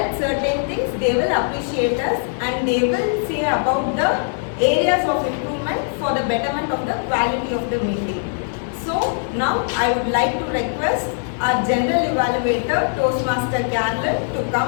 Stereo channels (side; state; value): right; silent; digital silence